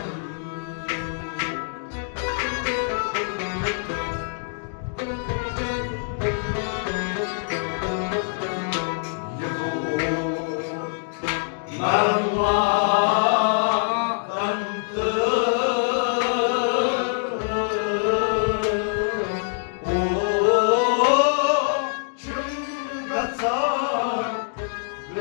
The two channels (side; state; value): right; silent; digital silence